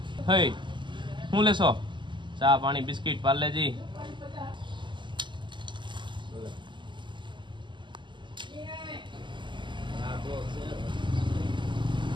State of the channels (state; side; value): late; left; 0.23 ms